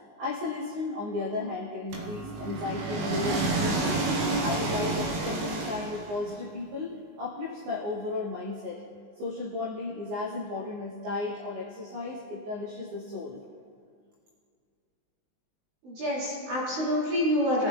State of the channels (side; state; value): left; late; 19 ms